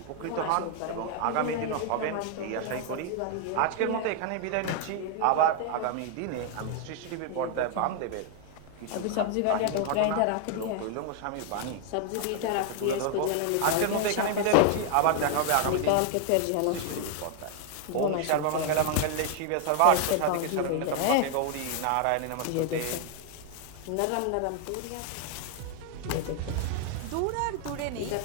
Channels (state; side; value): different; both; correlation 0.00